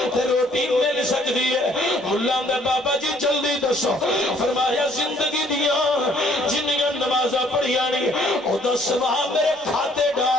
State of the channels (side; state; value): both; normal; correlation 0.62